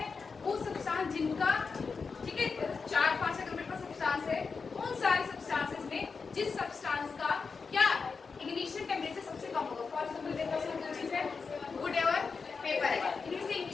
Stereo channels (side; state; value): right; quieter; 5.0 dB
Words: है? वो सब्सटेंस जिनका, ठीक है, 4-5 अगर मेरे पास सब्सटेंस है उन सारे सब्सटेंसेस में जिस सब्सटेंस का क्या इग्निशन टेम्परेचर सबसे कम होगा। फॉर एग्जांपल मेरे पास दो चीज है, वुड और पेपर है। इनमें से